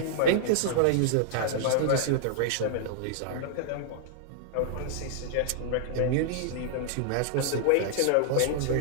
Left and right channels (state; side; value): different; both; correlation -0.01